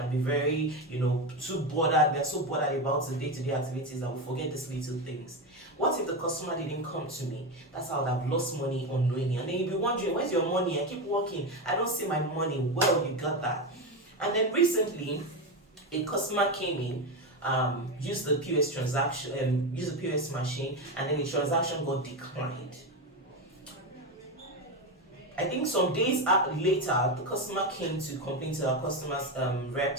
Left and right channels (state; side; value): normal; both; correlation 0.15